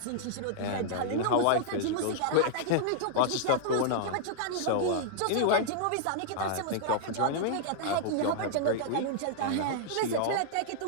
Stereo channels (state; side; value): different; both; correlation -0.01